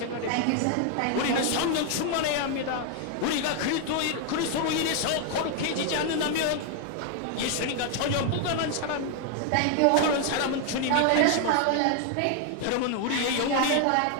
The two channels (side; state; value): both; different; correlation 0.00